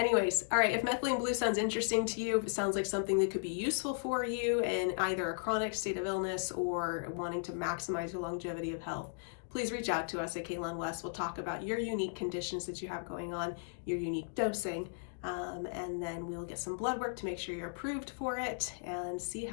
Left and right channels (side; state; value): right; silent; digital silence